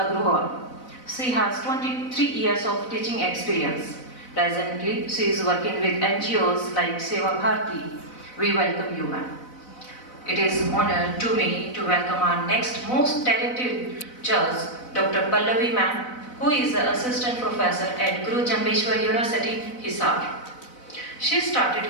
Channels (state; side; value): late; right; 4.0 ms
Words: She has 23 years of teaching experience. Presently, she is working with NGOs like Seva Bharati. We welcome you, ma'am. It is an honor to me to welcome our next most talented judge, Dr. Pallavi ma'am, who is an assistant professor at Guru Jambeshwar University, Hisar. She started